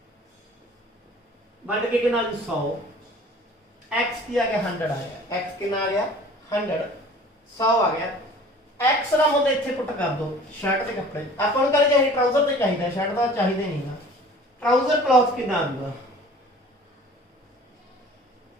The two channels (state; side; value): normal; both; correlation 0.47